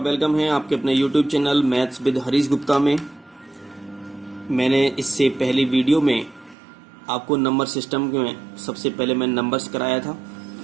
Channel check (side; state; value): left; drops out; at 6.6 s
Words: है आपके अपने YouTube channel maths with Harish Gupta में। मैंने इससे पहली वीडियो में आपको नंबर सिस्टम में सबसे पहले मैंने नंबर्स कराया था,